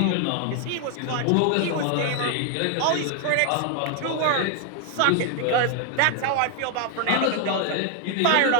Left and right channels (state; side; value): different; both; correlation 0.00